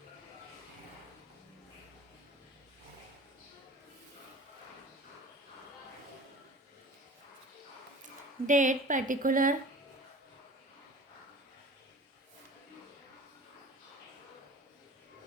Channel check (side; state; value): both; normal; correlation 0.41